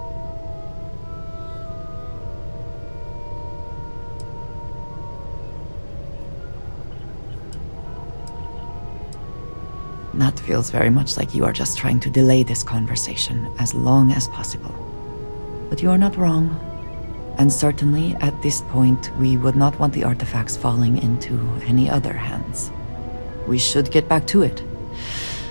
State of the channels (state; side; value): inverted; both; correlation -1.00